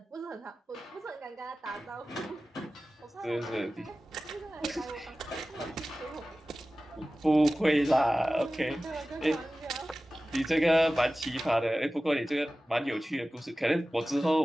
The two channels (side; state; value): both; normal; correlation 0.96